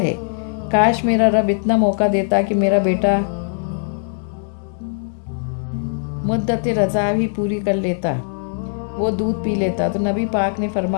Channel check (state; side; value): silent; right; digital silence